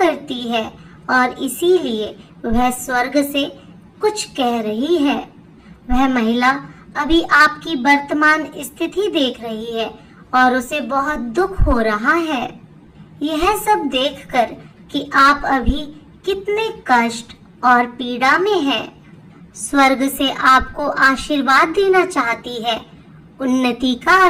है और इसीलिए वह स्वर्ग से कुछ कह रही है। वह महिला अभी आपकी वर्तमान स्थिति देख रही है और उसे बहुत दुख हो रहा है। यह सब देखकर कि आप अभी कितने कष्ट और पीड़ा में हैं। स्वर्ग से आपको आशीर्वाद देना चाहती है, उन्नति का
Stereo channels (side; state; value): both; identical; correlation 1.00